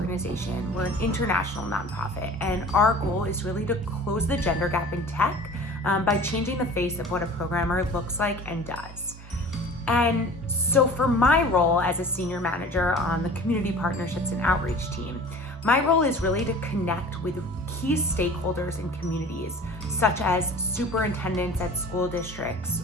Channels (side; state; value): both; normal; correlation 0.42